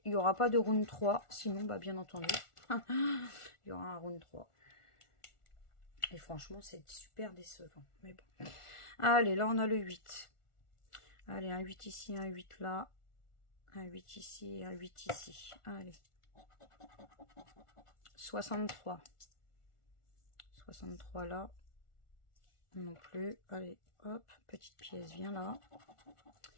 il n'y aura pas de round 3? Sinon, bah bien entendu, il y aura un round 3. Et franchement, c'est super décevant. Mais bon. Allez, là, on a le 8. Allez, un 8 ici, un 8 là. Un 8 ici et un 8 ici. Allez. 63. 63 là. Non plus. Allez, hop. Petite pièce, viens là.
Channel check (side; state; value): right; late; 1.4 ms